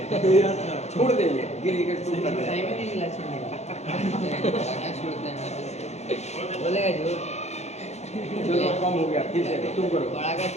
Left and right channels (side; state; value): right; late; 0.32 ms